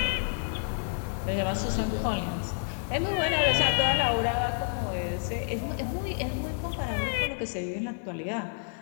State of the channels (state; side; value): silent; right; digital silence